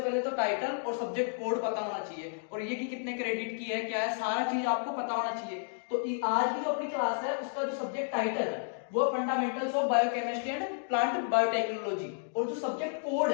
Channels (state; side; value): silent; right; digital silence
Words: पहले तो टाइटल और सब्जेक्ट कोड पता होना चाहिए, और ये कि कितने क्रेडिट की है, क्या है, सारा चीज आपको पता होना चाहिए। तो आज की जो अपनी क्लास है उसका जो सब्जेक्ट टाइटल है वो fundamentals of biochemistry and plant biotechnology, और जो सब्जेक्ट कोड